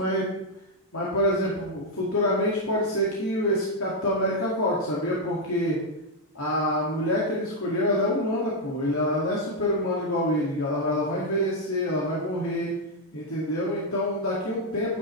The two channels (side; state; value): both; normal; correlation 0.00